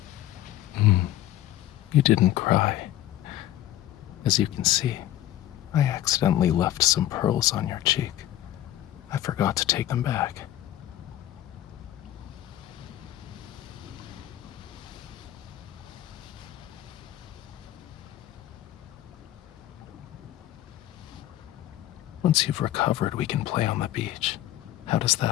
You didn't cry. As you can see, I accidentally left some pearls on your cheek. I forgot to take them back. Once you've recovered, we can play on the beach. How does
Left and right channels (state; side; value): quieter; right; 13.5 dB